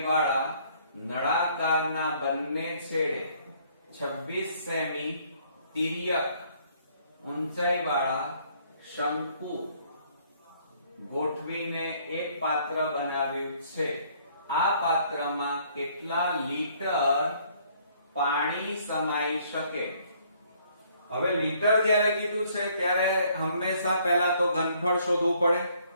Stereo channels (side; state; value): both; inverted; correlation -0.63